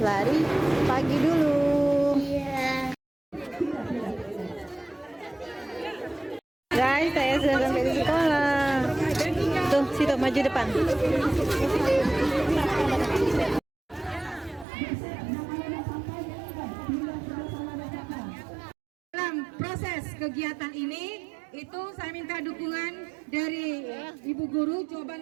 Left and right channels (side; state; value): left; drops out; at 14.7 s